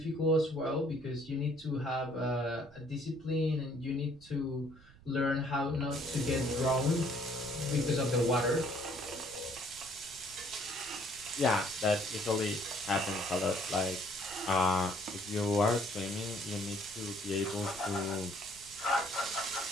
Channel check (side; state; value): right; noise; rumble, 24 dB below the sound